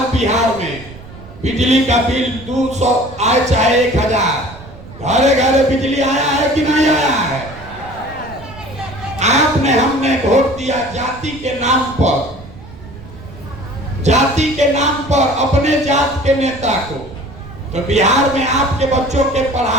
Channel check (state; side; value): noise; right; rumble, 17 dB below the sound